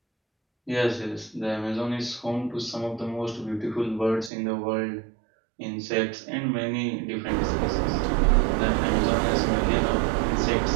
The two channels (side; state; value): left; drops out; at 4.3 s